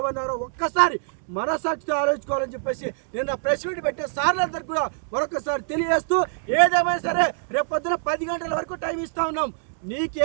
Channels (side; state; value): left; silent; digital silence